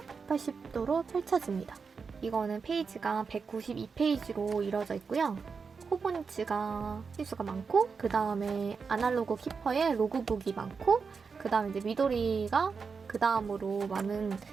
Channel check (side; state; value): left; quieter; 5.3 dB